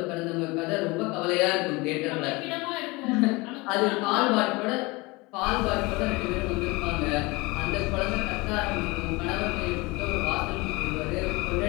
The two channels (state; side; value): quieter; right; 24.2 dB